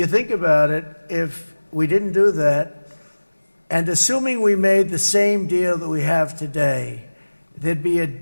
think about it, if we didn't do that, and assuming we made the same deal that we have today, there'd be a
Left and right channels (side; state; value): both; inverted; correlation -1.00